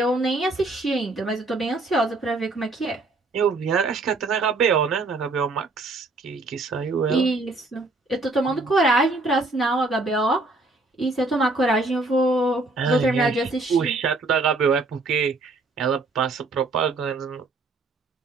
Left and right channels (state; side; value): quieter; left; 3.2 dB